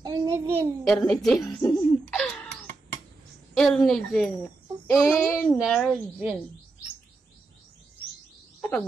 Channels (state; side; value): quieter; left; 3.5 dB